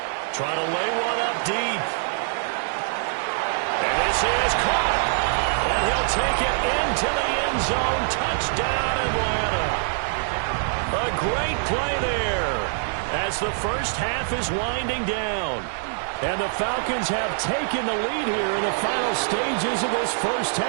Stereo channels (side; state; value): left; silent; 62 dB below the other